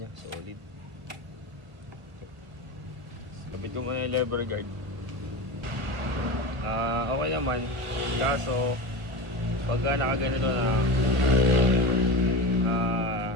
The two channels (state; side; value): late; left; 1.5 ms